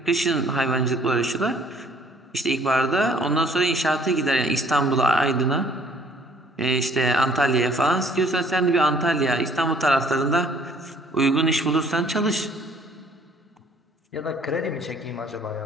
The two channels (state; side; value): normal; both; correlation 0.59